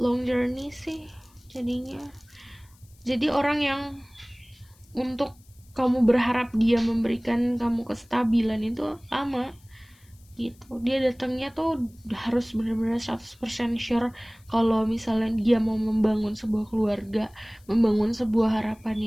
journey sih jadinya. Jadi orang yang untuk kamu berharap dia memberikan kamu kestabilan itu lama gitu. Dia datangnya tuh harus benar-benar 100% sure kalau misalnya dia mau membangun sebuah keluarga, membangun sebuah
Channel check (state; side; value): noise; left; hiss, 30 dB below the sound